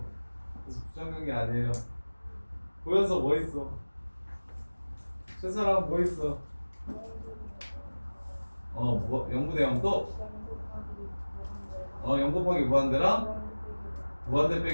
그래서 부정형이 아니에요. 보여서 뭐 있어? 최사람 뭐 있어? 0분의 0 또? 0 곱하기 무한대랑? 무한대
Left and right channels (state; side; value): inverted; both; correlation -1.00